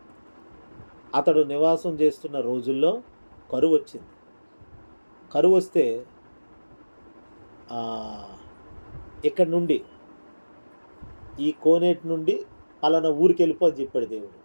అతడు నివాసం చేస్తున్న రోజుల్లో కరువు వచ్చింది. కరువు వస్తే ఇక్కడి నుండి, ఈ కోనేటి నుండి పలానా ఊరికి వెళ్ళిపో అని చెప్పాడు దేవుడు.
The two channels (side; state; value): both; inverted; correlation -1.00